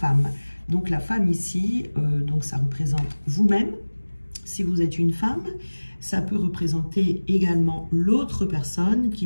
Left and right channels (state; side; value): inverted; both; correlation -1.00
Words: Donc, la femme ici, donc ça représente vous-même. Si vous êtes une femme, ça peut représenter également l'autre personne